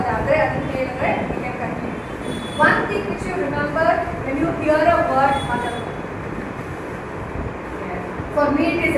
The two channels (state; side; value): identical; both; correlation 1.00